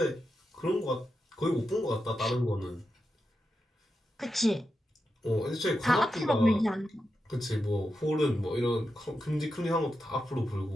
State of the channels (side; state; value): both; normal; correlation 0.88